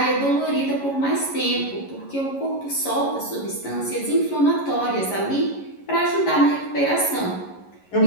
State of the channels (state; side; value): late; right; 11 ms